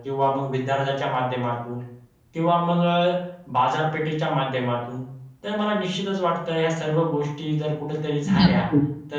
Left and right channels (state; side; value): identical; both; correlation 1.00